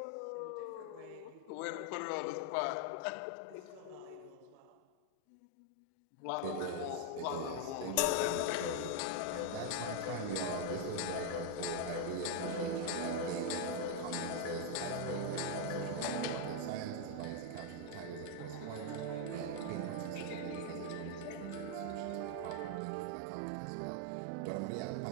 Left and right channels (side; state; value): both; different; correlation 0.00